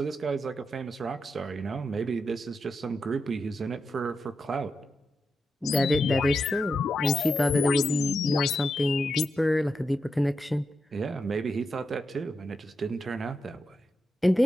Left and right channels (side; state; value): both; normal; correlation 0.87